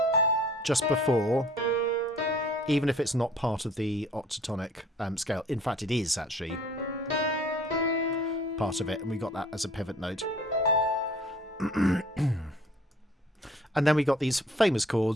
just before, even if it's not part of the octatonic scale. In fact, it is actually part of it, and we got that as a pivot note. And then we got these famous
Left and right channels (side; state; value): both; normal; correlation 0.53